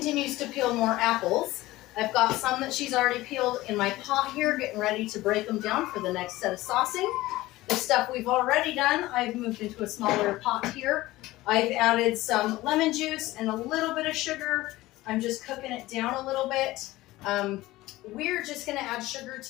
to peel more apples, I've got some that she's already peeled in my pot here, getting ready to break them down for the next set of saucing. The stuff we've already done, I've moved into a smaller pot here. I've added some lemon juice and a little bit of sugar. I'm just cooking it down a little bit. We're just gonna add sugar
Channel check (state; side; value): quieter; right; 17.9 dB